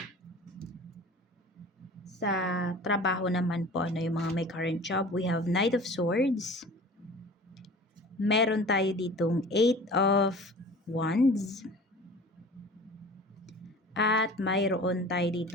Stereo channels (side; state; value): both; normal; correlation 0.42